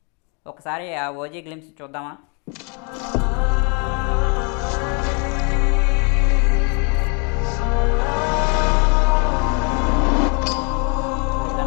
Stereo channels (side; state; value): right; quieter; 35.0 dB